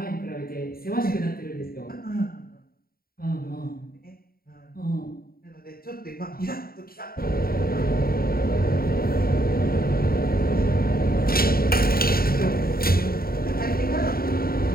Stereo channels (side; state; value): right; late; 0.43 ms